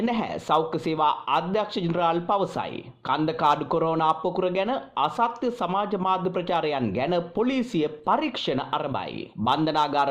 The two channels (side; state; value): both; identical; correlation 1.00